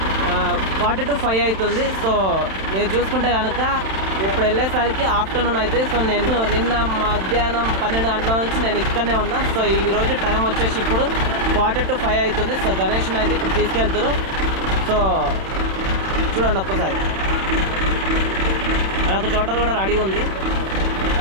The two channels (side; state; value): left; late; 31 ms